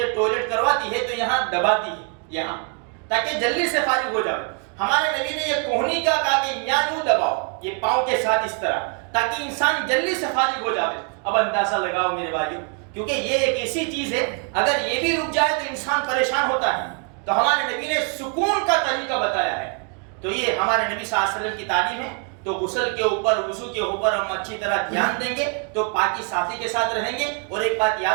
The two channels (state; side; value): quieter; left; 38.7 dB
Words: ٹوائلٹ کرواتی ہے تو یہاں دباتی ہے یہاں، تاکہ جلدی سے فارغ ہو جائے. ہمارے نبی نے یہ کوہنی کا کہا کہ یہاں یوں دباؤ، یہ پاؤں کے ساتھ اس طرح، تاکہ انسان جلدی سے فارغ ہو جائے. اب اندازہ لگاؤ میرے بھائیو، کیونکہ یہ ایک ایسی چیز ہے اگر یہ بھی رک جائے تو انسان پریشان ہوتا ہے. تو ہمارے نبی نے سکون کا طریقہ بتایا ہے. تو یہ ہمارے نبی صلی اللہ علیہ وسلم کی تعلیم ہے. تو غسل کے اوپر، وضو کے اوپر ہم اچھی طرح دھیان دیں گے تو پاکی صافی کے ساتھ رہیں گے. اور ایک بات